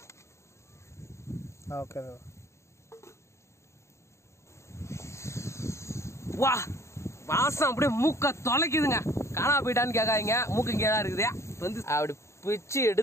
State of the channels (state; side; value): late; right; 0.14 ms